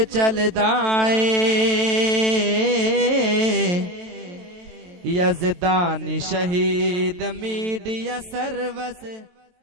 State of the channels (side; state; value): left; late; 23 ms